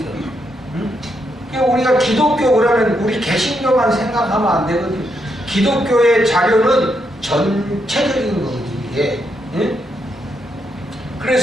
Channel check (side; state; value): both; normal; correlation 0.79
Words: 응? 그러니까 우리가 기독교 그러면 우리 개신교만 생각하면 안 되거든요. 기독교의 자료는 전체적인 거거든요. 이게. 응?